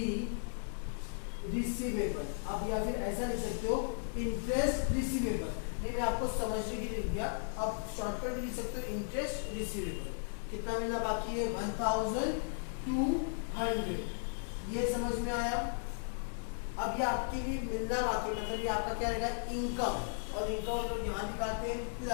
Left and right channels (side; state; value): right; silent; digital silence